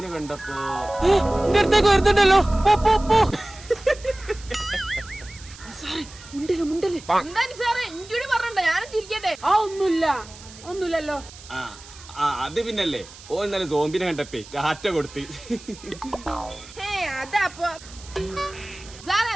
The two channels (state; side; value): noise; right; hiss, 19 dB below the sound